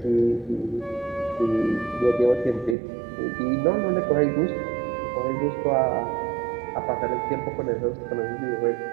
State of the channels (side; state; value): left; drops out; at 2.8 s